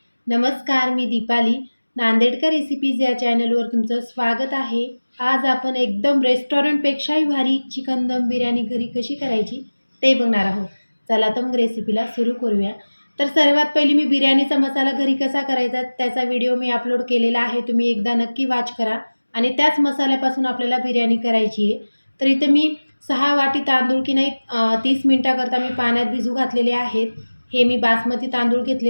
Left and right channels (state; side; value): inverted; both; correlation -1.00